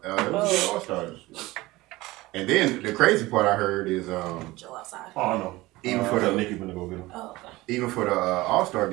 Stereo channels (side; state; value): left; quieter; 19.7 dB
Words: It was a good All-Star. And then the crazy part I heard is Joe outside. Oh no. Even for the Nikki gonna go get him. Oh, okay. Even for the All-Star